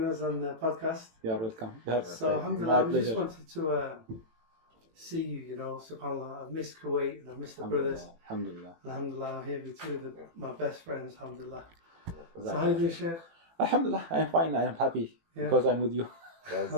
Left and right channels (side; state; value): left; late; 18 ms